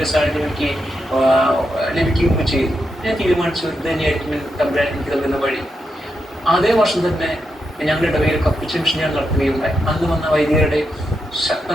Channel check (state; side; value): normal; both; correlation 0.85